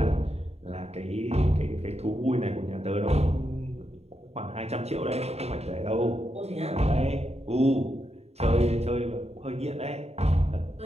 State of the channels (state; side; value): late; left; 0.30 ms